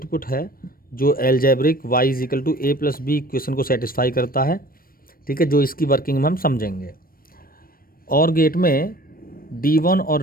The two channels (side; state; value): right; late; 0.42 ms